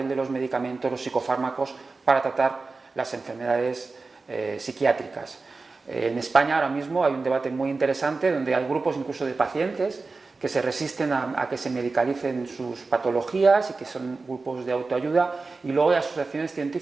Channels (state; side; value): quieter; left; 3.9 dB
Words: de los medicamentos, los psicofármacos para tratar las enfermedades psiquiátricas. En España ahora mismo hay un debate muy interesante donde hay grupos incluso de pacientes que se resisten a que se medicalicen sus patologías y que son grupos de autoayuda, y luego hay asociaciones